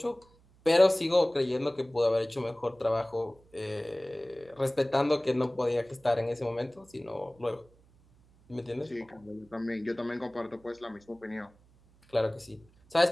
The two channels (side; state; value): right; noise; hum, 29 dB below the sound